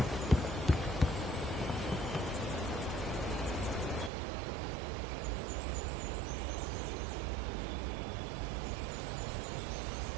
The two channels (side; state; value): left; drops out; at 4.1 s